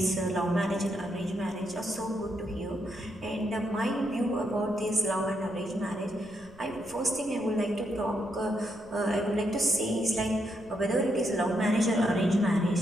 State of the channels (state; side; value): noise; left; rumble, 23 dB below the sound